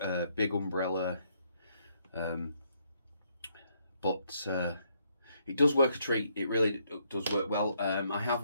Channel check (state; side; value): inverted; both; correlation -0.73